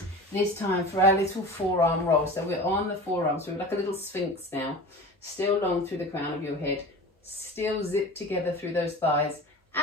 This time for our little forearm roll. So we're on the forearm, so we're like a little sphinx now. Still long through the crown of your head. Still zip together through those thighs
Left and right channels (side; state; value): both; normal; correlation 0.35